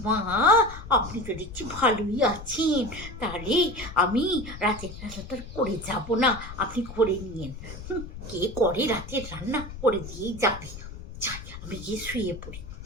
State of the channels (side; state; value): left; noise; rumble, 12 dB below the sound